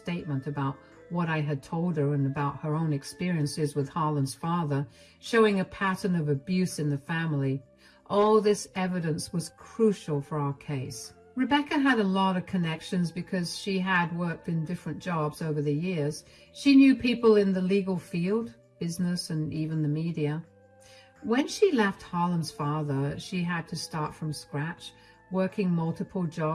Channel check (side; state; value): both; identical; correlation 1.00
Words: about what I had told her and about her own experiences with Harlan's father, showing a pattern of abuse in the family. All this evidence was crucial for our case. Rebecca had a lot of connections because she had worked in different jobs over the years. She knew people in the legal field, business, and even the media. When she left Harlan's father, she had to start from scratch, working multiple